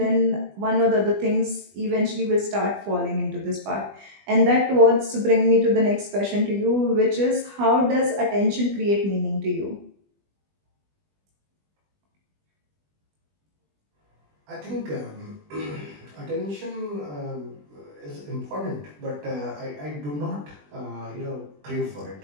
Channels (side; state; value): left; late; 20 ms